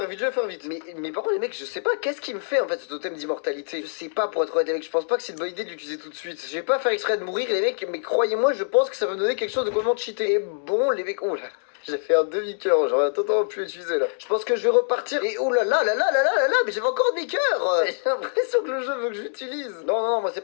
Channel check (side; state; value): right; silent; digital silence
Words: Mais par contre les mecs, je sais pas qu'est-ce qui me fait en fait ce totem d'immortalité. Je sais pas pour être honnête les mecs, je pense pas que c'est une bonne idée de l'utiliser tout de suite. Je vais pas faire exprès de mourir les mecs, mais croyez-moi, je pense que ça va me donner quelque chose de complètement cheaté. Et bon les mecs, oh là. J'ai fait un demi-cœur, j'aurais totalement pu l'utiliser là. Je pense que je vais repartir. Et oh là là, mais j'avais encore un demi-cœur. J'ai l'impression que le jeu veut que je l'utilise. Non, moi c'est